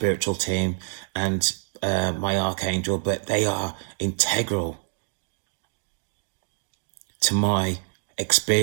team and my archangel, but they are integral to my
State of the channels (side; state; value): left; silent; 60 dB below the other